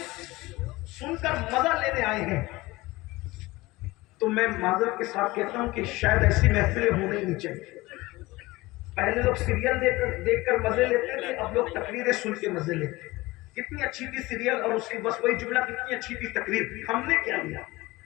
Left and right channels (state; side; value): quieter; right; 20.5 dB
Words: سن کر مزہ لینے آئے ہیں تو میں معذرت کے ساتھ کہتا ہوں کہ شاید ایسی محفلیں ہونے ہی نہیں چاہیے۔ پہلے لوگ سیریل دیکھ کر مزے لیتے تھے، اب لوگ تقریریں سن کے مزے لیتے ہیں۔ کتنی اچھی تھی سیریل اور اس کی بس وہی جملہ، کتنی اچھی تھی تقریر، ہم نے کیا لیا؟